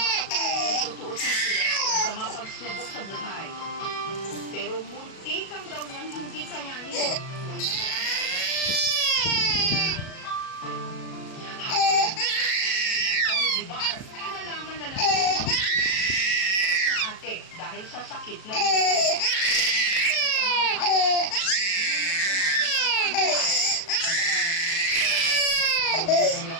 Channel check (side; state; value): right; late; 37 ms